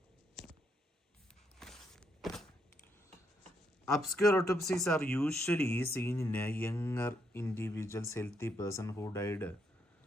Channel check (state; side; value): normal; both; correlation 0.76